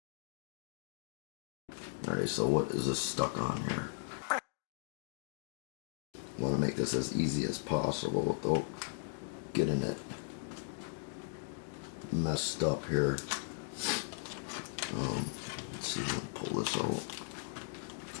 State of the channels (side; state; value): right; silent; digital silence